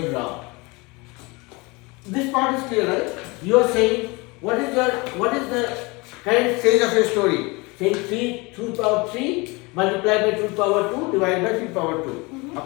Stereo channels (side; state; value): right; quieter; 25.9 dB